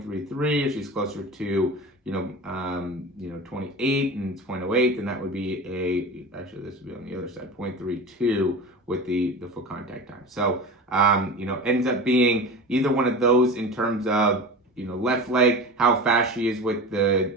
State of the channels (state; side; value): normal; both; correlation 0.31